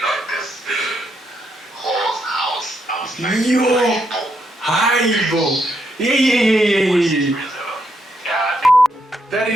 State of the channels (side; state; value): both; normal; correlation 0.78